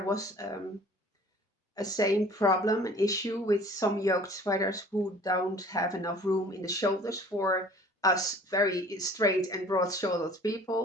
a same problem, an issue with some yoked sweaters who don't have enough room in the shoulders for us very straight and broad shouldered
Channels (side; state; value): both; normal; correlation 0.49